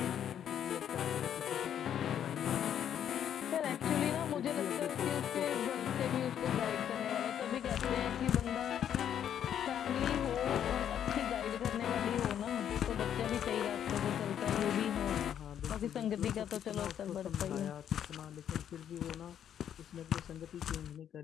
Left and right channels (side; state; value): right; quieter; 9.6 dB